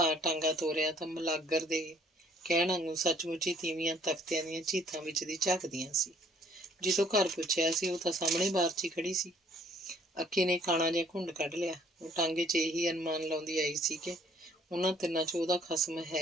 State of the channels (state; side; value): normal; both; correlation 0.61